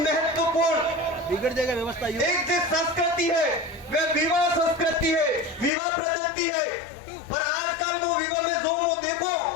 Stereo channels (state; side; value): drops out; right; at 5.7 s